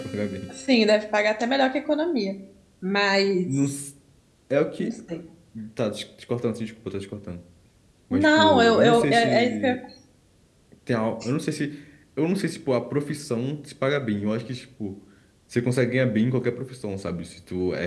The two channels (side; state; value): both; identical; correlation 1.00